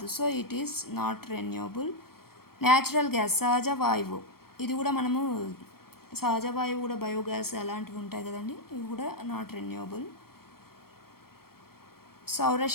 so it is not renewable. Natural gas సహజ వాయువు, ఇది కూడా మనము సహజ వాయువు కూడా బయోగ్యాస్ అలాంటివి ఉంటాయి కదండి, ఇవి కూడా నాట్ రెన్యూవబుల్.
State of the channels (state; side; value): late; right; 0.94 ms